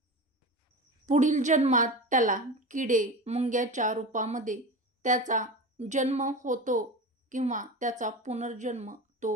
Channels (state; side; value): normal; both; correlation 0.28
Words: जन्मात त्याला किडे मुंग्याच्या रूपामध्ये त्याचा जन्म होतो किंवा त्याचा पुनर्जन्म